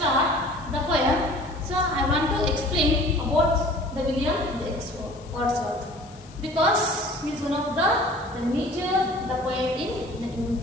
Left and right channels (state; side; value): noise; left; hiss, 24 dB below the sound